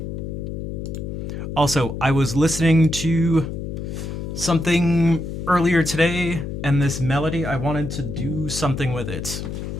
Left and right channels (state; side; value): noise; left; hum, 6 dB below the sound